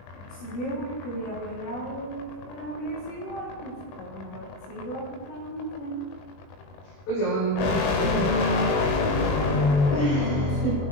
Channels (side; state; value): right; late; 21 ms